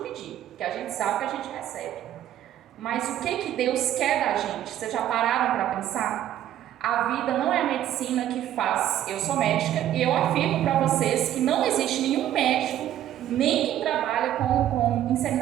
porque a gente sabe que a gente recebe. Mas o que Deus quer da gente? Vocês já pararam para pensar? A vida não é a medicina que faz. Eu sou médica e eu afirmo para vocês que não existe nenhum médico, nem quem trabalha com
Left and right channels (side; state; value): left; quieter; 11.9 dB